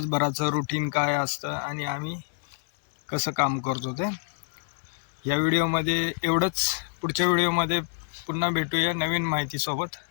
रुटीन काय असतं आणि आम्ही कसं काम करतो ते. या व्हिडिओमध्ये एवढंच. पुढच्या व्हिडिओमध्ये पुन्हा भेटूया नवीन माहितीसोबत.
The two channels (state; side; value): silent; right; digital silence